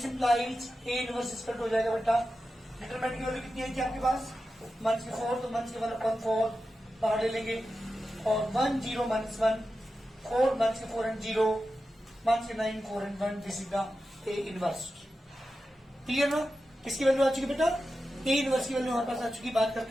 इंप्लाइज ए इनवर्स इसका हो जाएगा बेटा। डिटरमिनेंट की वैल्यू कितनी है कि आपके पास? माइनस के 4, तो माइनस के 1 अपन 4 बाहर ले लेंगे और 1 0 माइनस 1 4 माइनस के 4 एंड 0 माइनस के 9 4 and 1। This is the A inverse. Clear ना? किसकी वैल्यू आ चुकी बेटा? ए इनवर्स की वैल्यू हमारे पास आ चुकी। बात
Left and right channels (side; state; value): both; normal; correlation 0.92